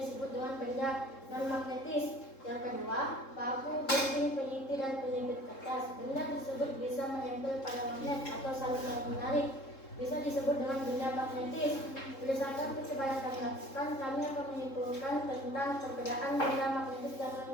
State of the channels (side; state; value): right; late; 3.7 ms